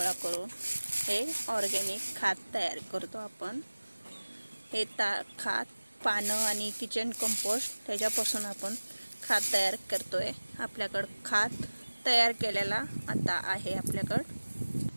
करून हे ऑर्गॅनिक खत तयार करतो आपण। हे खत पानं आणि किचन कंपोस्ट त्याच्यापासून आपण खत तयार करतोय। आपल्याकडे खत तयार केलेला आता आहे आपल्याकडे।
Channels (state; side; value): inverted; both; correlation -1.00